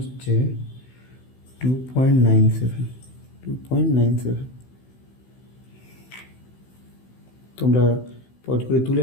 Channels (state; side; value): late; right; 16 ms